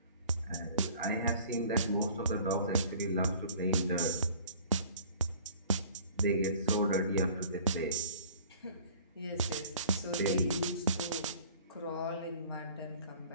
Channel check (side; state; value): both; inverted; correlation -0.50